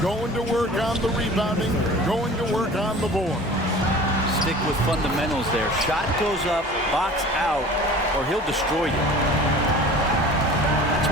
going to work on the rebounding, going to work on the board. basic with fundamentals there. Shot goes up, box out, or he'll destroy you. That's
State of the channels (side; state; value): both; normal; correlation 0.42